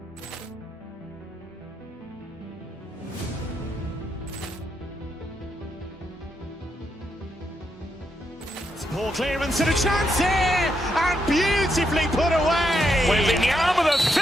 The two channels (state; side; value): normal; both; correlation 0.81